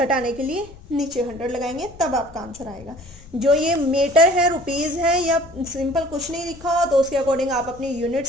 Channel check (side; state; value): left; noise; rumble, 21 dB below the sound